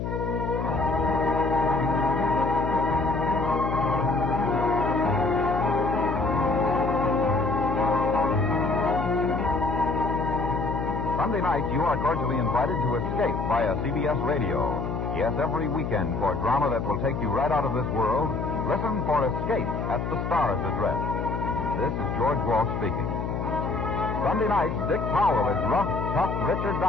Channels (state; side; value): noise; left; hum, 3 dB below the sound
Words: Sunday night, you are cordially invited to Escape via CBS Radio. Yes, every weekend for drama that will take you right out of this world, listen for Escape at the Star's Address. This is George Walsh speaking. Sunday nights, Dick Powell is rough, tough Richard